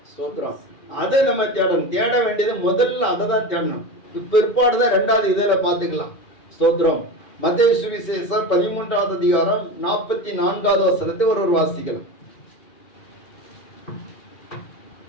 ஸ்தோத்திரம். அதை நம்ம தேடணும். தேட வேண்டியது முதல்ல அதை தான் தேடணும். பிற்பாடுதான் ரெண்டாவது இதில பார்த்துக்கலாம். ஸ்தோத்திரம். மத்தேயு சுவிசேஷம் 13வது அதிகாரம் 44வது வசனத்தை ஒரு வாசிக்கலாம்.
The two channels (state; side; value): late; right; 2.4 ms